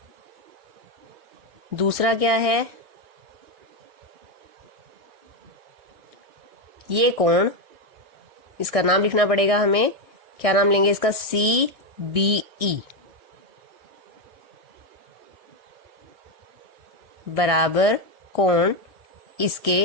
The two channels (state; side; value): late; left; 1.6 ms